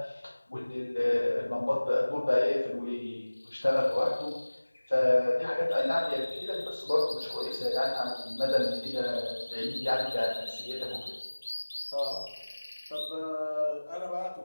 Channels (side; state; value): both; inverted; correlation -1.00